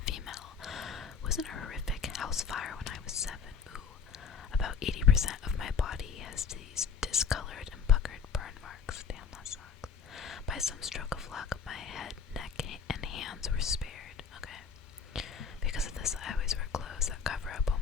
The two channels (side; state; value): right; quieter; 6.3 dB